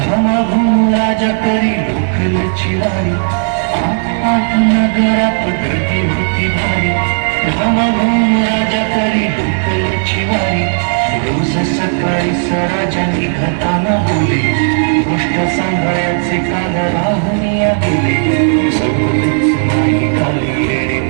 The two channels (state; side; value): silent; left; 71 dB below the other